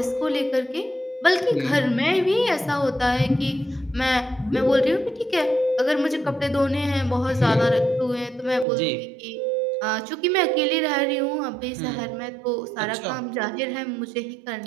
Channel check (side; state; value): left; drops out; at 8.7 s